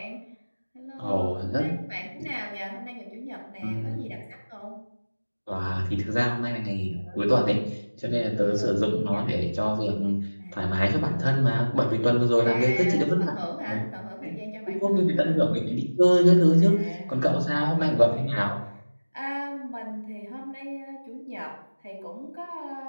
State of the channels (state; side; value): inverted; both; correlation -1.00